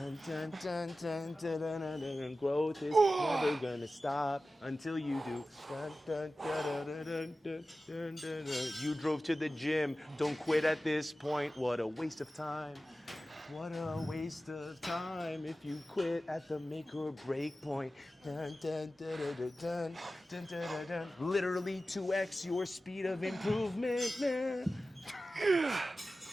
dun, dun, dun, dun, dun, dun, dun. Growth is never gonna stop until you do. Dun, dun, dun, dun, dun, dun, dun, dun, dun. You drove to the gym. Don't quit at this point. What a waste of time. What a waste of time if you quit at the make or break point. Dun, dun, dun, dun, dun, dun, dun, dun, dun, dun. Literally 2x your speed of improvement, man.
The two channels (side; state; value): both; normal; correlation 0.95